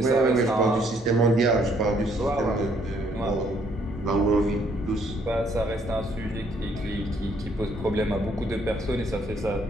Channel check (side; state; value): both; normal; correlation 0.67